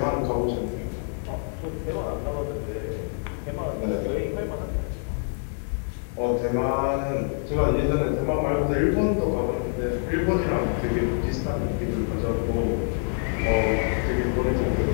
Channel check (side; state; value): right; silent; 61 dB below the other